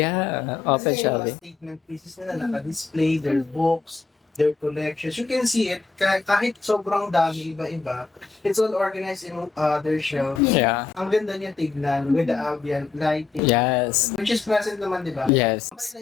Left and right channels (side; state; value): right; quieter; 4.5 dB